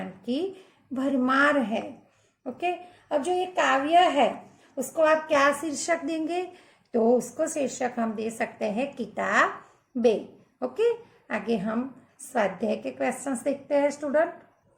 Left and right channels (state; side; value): identical; both; correlation 1.00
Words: की भरमार है। ओके, अब जो ये काव्य है उसको आप क्या शीर्षक देंगे? तो उसको शीर्षक हम दे सकते हैं किताबें। ओके, आगे हम स्वाध्याय के क्वेश्चंस देखते हैं स्टूडेंट।